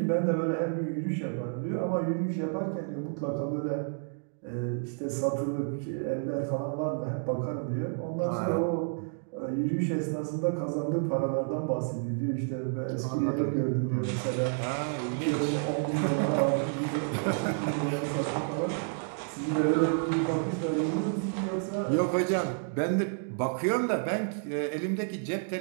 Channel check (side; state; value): left; silent; 58 dB below the other